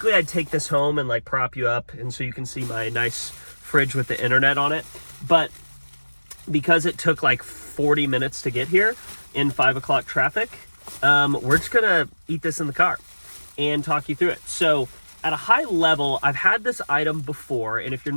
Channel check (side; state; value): both; inverted; correlation -1.00